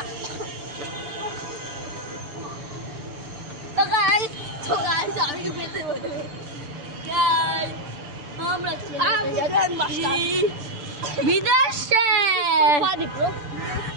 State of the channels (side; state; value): left; late; 6.8 ms